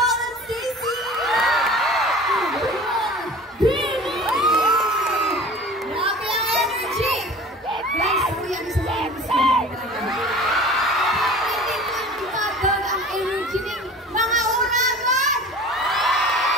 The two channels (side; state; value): both; normal; correlation 0.41